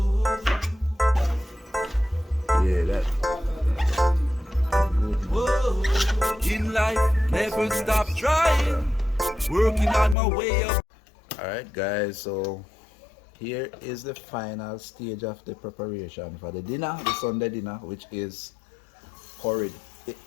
Yeah, that. Whoa. In life, never stop trying, working on my way up. Alright guys, so here is the final stage of the preparation for the dinner, the Sunday dinner, which is curried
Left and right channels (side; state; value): right; drops out; at 10.2 s